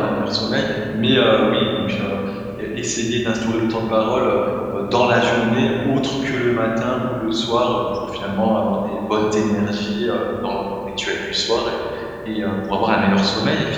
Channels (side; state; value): both; identical; correlation 1.00